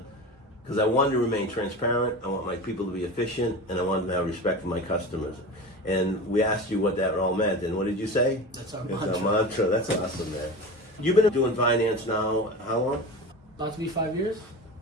Because I wanted to remain transparent, I want my people to be efficient, and I wanted to have respect for my customers. And we asked you what that all meant, and what did you say? That's our mantra. That's awesome, man. You've been doing finance now, how long? About to be 5 years.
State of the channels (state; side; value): normal; both; correlation 0.30